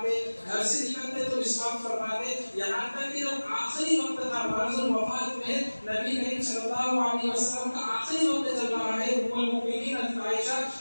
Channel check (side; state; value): both; inverted; correlation -1.00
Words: گھر سے نکلتے تو مسواک فرماتے، یہاں تک کہ جب آخری وقت تھا مرض الوفات میں، نبی کریم صلی اللہ علیہ وسلم کا آخری وقت چل رہا ہے، ام المؤمنین حضرت عائشہ